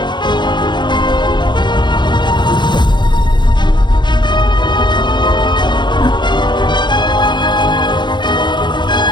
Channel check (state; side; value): late; right; 0.22 ms